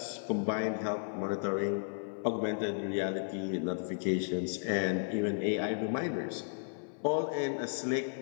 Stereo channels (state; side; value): silent; right; 55 dB below the other